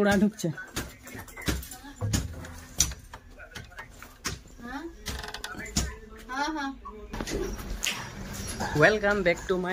ঢুকছে। Welcome back to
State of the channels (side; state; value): both; identical; correlation 1.00